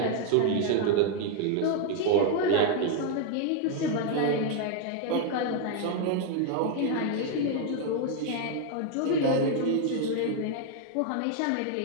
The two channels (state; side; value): different; both; correlation 0.00